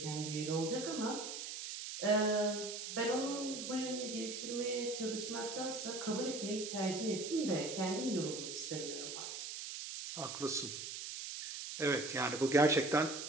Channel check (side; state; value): right; noise; hiss, 6 dB below the sound